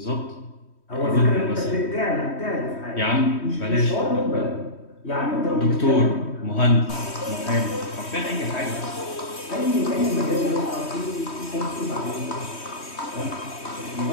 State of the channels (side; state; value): right; late; 3.1 ms